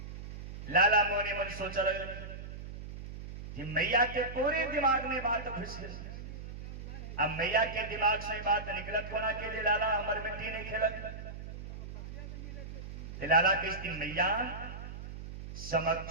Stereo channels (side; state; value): right; noise; hum, 10 dB below the sound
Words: लाला मोने मन सोचा लगे कि मैया के पूरे दिमाग में बात घुस गई। अब मैया के दिमाग से बात निकलत होना के लिए लाला अमर मिट्टी नहीं खेलत। लाला किस दिन मैया